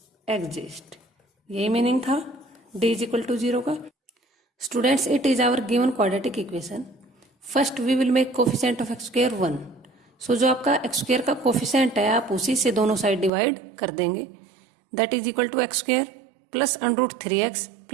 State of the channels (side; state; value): left; drops out; at 13.3 s